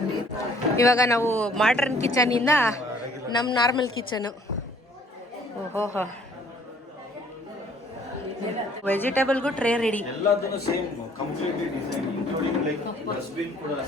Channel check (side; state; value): both; normal; correlation 0.59